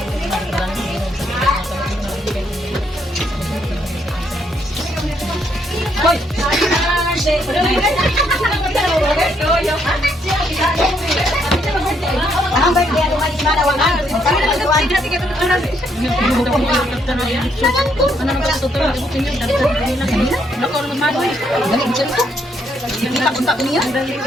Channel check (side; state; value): both; normal; correlation 0.73